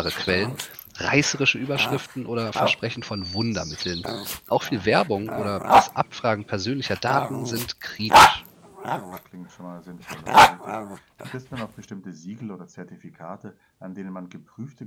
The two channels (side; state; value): both; identical; correlation 1.00